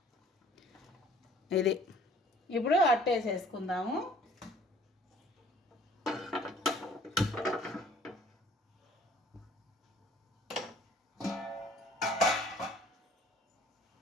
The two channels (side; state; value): both; normal; correlation 0.54